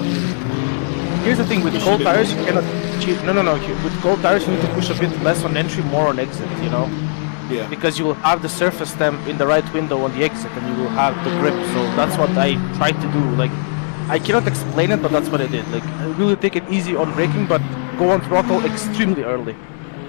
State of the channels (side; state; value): right; silent; 65 dB below the other